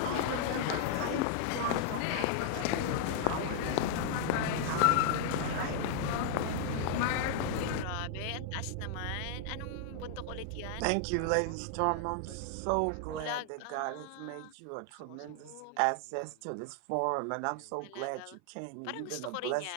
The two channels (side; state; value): both; different; correlation 0.00